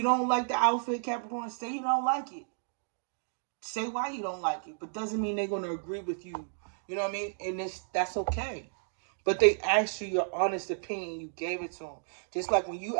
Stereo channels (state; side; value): silent; left; digital silence